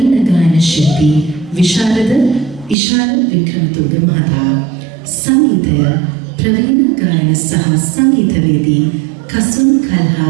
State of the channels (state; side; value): drops out; left; at 2.8 s